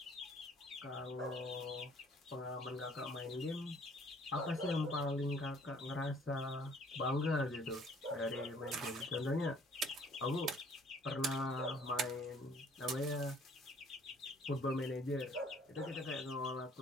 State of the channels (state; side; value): normal; both; correlation 0.58